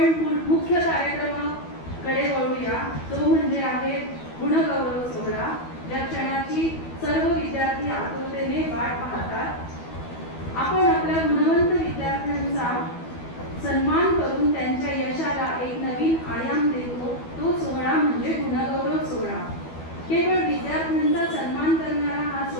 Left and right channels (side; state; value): right; late; 12 ms